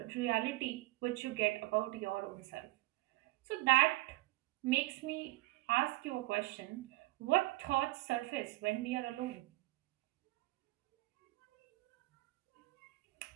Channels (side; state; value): left; quieter; 20.0 dB